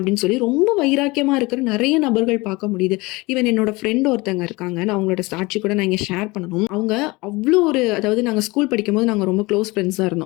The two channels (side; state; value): right; quieter; 23.3 dB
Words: சொல்லி ரொம்ப வைராக்கியமா இருக்கிற நிறைய நபர்கள் பார்க்க முடியுது. ஈவன் என்னோட ஃப்ரெண்ட் ஒருத்தங்க இருக்காங்க, நான் அவங்களோட சாட்சி கூட நான் இங்கே ஷேர் பண்ணணும். அவங்க அவ்வளோ அதாவது நாங்கள் ஸ்கூல் படிக்கும்போது நாங்கள் ரொம்ப க்ளோஸ் ஃப்ரெண்ட்ஸாக